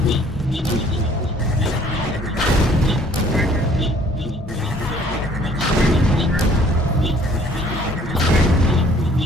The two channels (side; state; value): both; normal; correlation 0.57